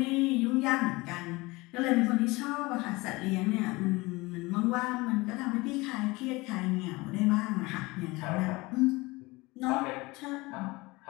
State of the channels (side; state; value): right; quieter; 22.7 dB